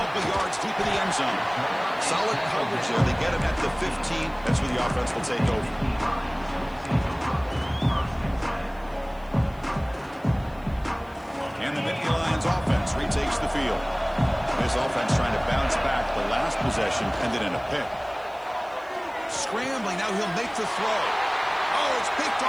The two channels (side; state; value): left; noise; hiss, 29 dB below the sound